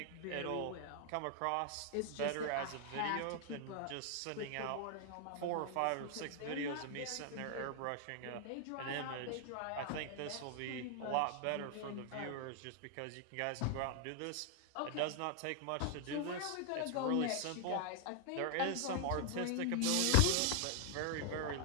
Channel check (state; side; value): different; both; correlation 0.00